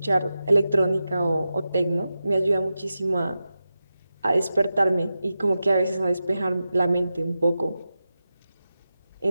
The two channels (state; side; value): inverted; both; correlation -0.92